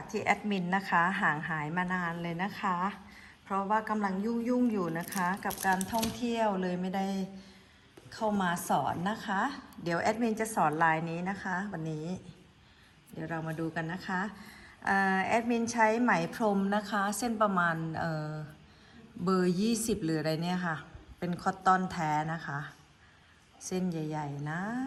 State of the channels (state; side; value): identical; both; correlation 1.00